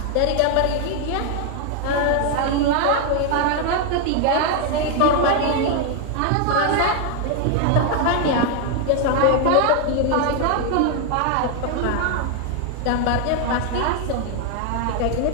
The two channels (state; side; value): different; both; correlation 0.00